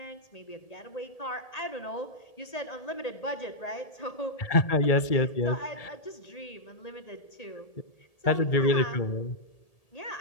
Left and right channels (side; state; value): right; late; 1.8 ms